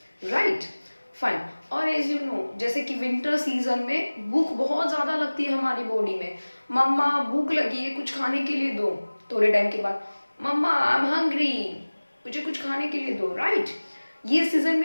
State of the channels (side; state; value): both; inverted; correlation -1.00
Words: राइट? फाइन. और एज यू नो, जैसे कि विंटर सीजन में भूख बहुत ज्यादा लगती है हमारी बॉडी में. मम्मा भूख लगी है, कुछ खाने के लिए दो. थोड़े टाइम के बाद मम्मा आई एम हंग्री, मुझे कुछ खाने के लिए दो, राइट? ये सीजन